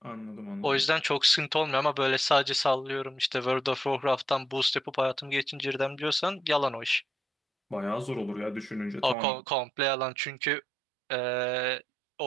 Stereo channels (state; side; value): drops out; left; at 9.2 s